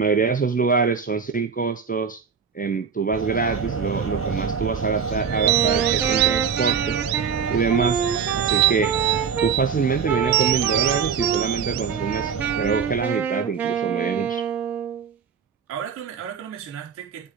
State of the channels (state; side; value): quieter; left; 6.6 dB